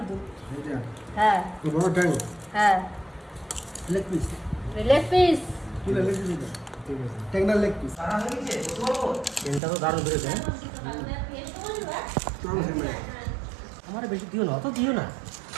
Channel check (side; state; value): left; drops out; at 9.6 s